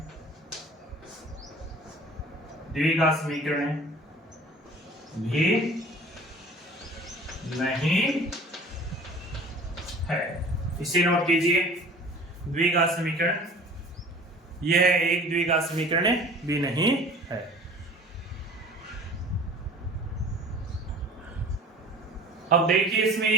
भी नहीं है। इसे नोट कीजिए, द्विघात समीकरण, यह एक द्विघात समीकरण भी नहीं है। अब देखिए इसमें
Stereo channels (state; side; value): normal; both; correlation 0.45